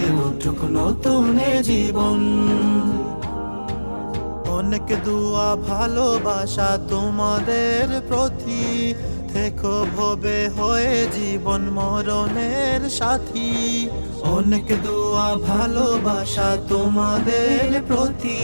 উঠুক নতুন জীবন। অনেক দুয়া ভালোবাসা তোমাদের প্রতি, থেকো ভবে হয়ে জীবন মরণের সাথী। অনেক দুয়া ভালোবাসা তোমাদের প্রতি,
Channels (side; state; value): both; inverted; correlation -1.00